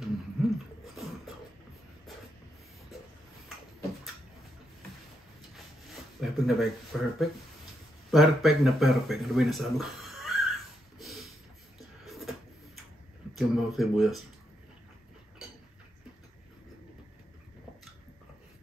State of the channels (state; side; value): normal; both; correlation 0.81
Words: Perfect na perfect. Ano ba yung nasabi ko? Yung mga sibuyas.